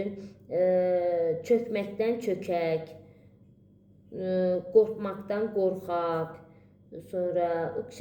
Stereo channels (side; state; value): both; identical; correlation 1.00